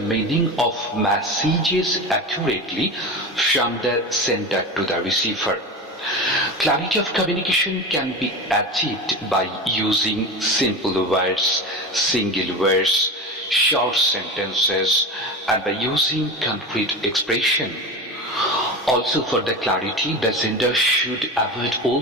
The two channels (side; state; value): both; normal; correlation 0.26